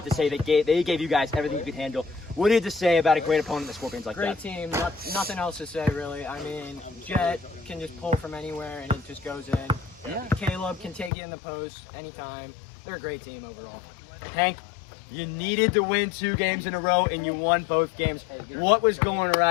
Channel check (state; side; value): drops out; right; at 11.1 s